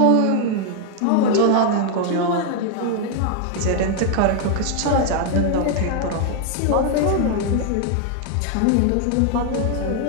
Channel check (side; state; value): both; different; correlation 0.00